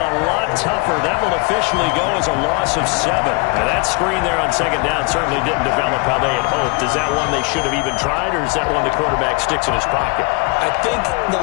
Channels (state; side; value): quieter; right; 28.8 dB